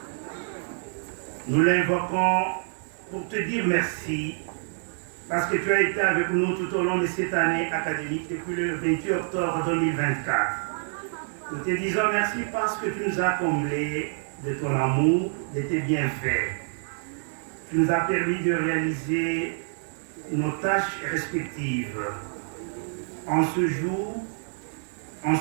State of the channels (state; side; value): silent; left; digital silence